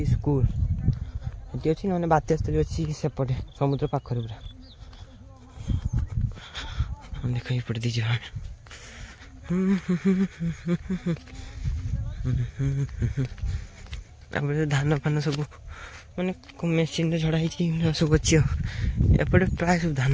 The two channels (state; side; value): identical; both; correlation 1.00